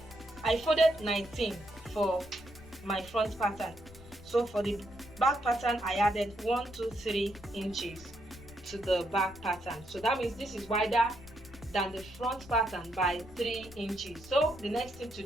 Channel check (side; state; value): left; noise; rumble, 19 dB below the sound